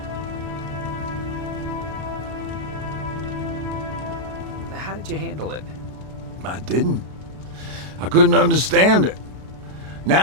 How did you handle it? I didn't. I couldn't understand it.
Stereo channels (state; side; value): late; left; 33 ms